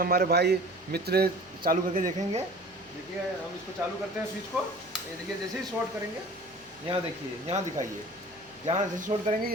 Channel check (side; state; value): left; noise; hum, 28 dB below the sound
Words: भाई मित्र चालू करके देखेंगे। देखिए हम इसको चालू करते हैं स्विच को। ये देखिए जैसे ही शॉर्ट करेंगे, यहाँ देखिए, यहाँ दिखाइए, जहाँ जैसे शॉर्ट करेंगे